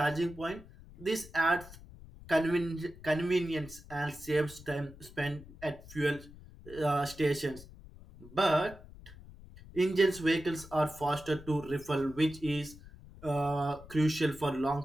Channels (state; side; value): noise; left; rumble, 18 dB below the sound